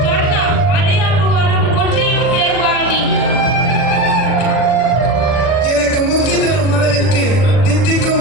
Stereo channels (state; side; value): late; right; 40 ms